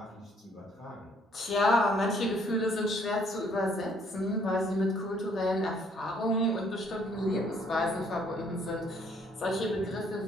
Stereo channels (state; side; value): normal; both; correlation 0.64